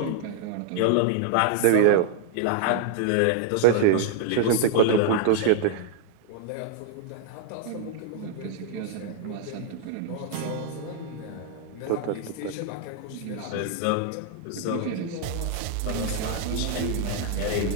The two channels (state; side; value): different; both; correlation -0.01